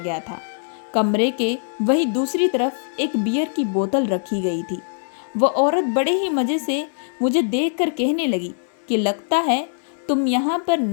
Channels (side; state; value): right; silent; 61 dB below the other